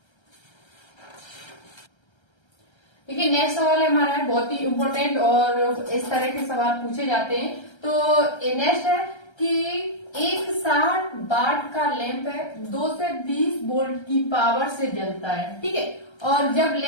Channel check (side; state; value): right; late; 1.3 ms